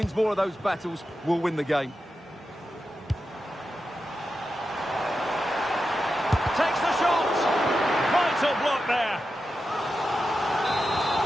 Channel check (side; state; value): both; normal; correlation 0.90